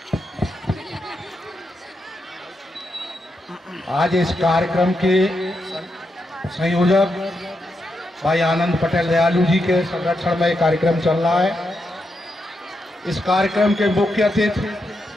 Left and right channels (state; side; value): normal; both; correlation 0.84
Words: आज इस कार्यक्रम के संयोजक भाई आनंद पटेल दयालु जी के संरक्षण में कार्यक्रम चल रहा है। इस कार्यक्रम के मुख्य अतिथि